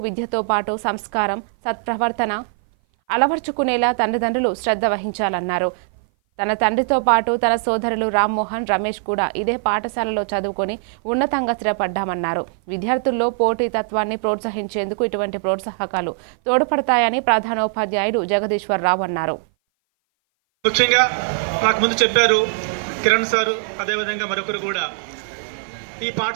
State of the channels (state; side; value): silent; left; 58 dB below the other